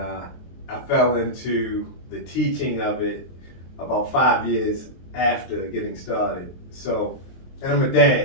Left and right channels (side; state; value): right; late; 23 ms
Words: fell into the teaching of it about 5 years after getting started. So, and I'm a